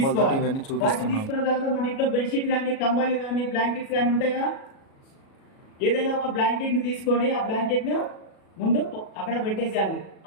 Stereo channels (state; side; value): late; right; 37 ms